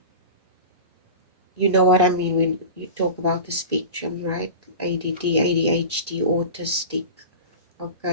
you know what I mean when you talk about the spectrum, right? ADD, ADHD, autistic.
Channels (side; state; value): both; inverted; correlation -0.31